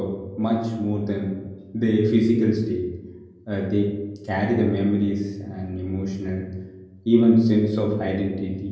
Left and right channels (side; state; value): both; identical; correlation 1.00